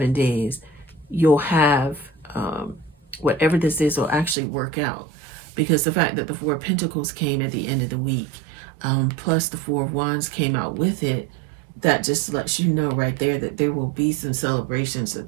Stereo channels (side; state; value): left; drops out; at 4.4 s